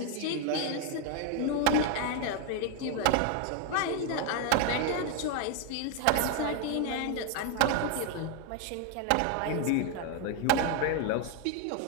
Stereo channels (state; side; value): different; both; correlation 0.00